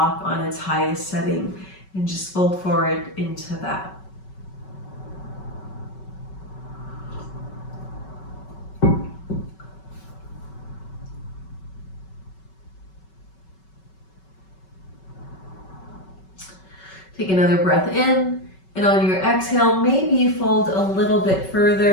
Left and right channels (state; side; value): late; right; 5.3 ms